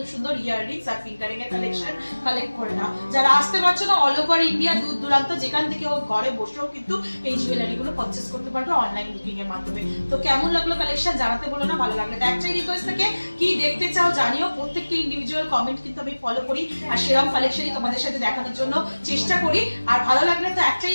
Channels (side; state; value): both; inverted; correlation -1.00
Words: সুন্দর ইয়াররিংস আর ফিঙ্গারিং এর কালেকশন কালেক্ট করে নাও। যারা আসতে পারছো না, অল ওভার ইন্ডিয়া দূর দূরান্ত যেখান থেকে ও ঘরে বসেও কিন্তু এই জুয়েলারি গুলো পারচেস করতে পারবে অনলাইন বুকিং এর মাধ্যমে। তো কেমন লাগলো কালেকশন জানাতে বলো না। ভালো লাগলে একটাই রিকোয়েস্ট থাকে, কি দেখতে চাও জানিও। প্রত্যেকটা ইন্ডিভিজুয়াল কমেন্ট কিন্তু আমি ফলো করি আর সেরকম কালেকশনই তোমাদের সাথে দেখানোর জন্য চেষ্টা করি। আর ভালো লাগলে তো একটাই